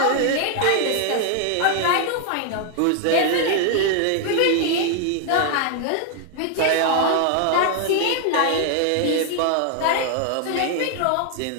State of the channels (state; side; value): different; both; correlation 0.00